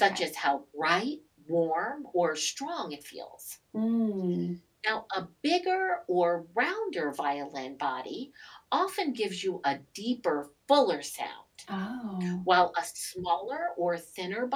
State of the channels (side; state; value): both; identical; correlation 1.00